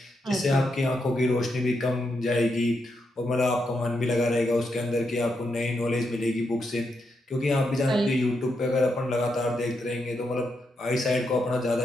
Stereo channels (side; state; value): both; normal; correlation 0.83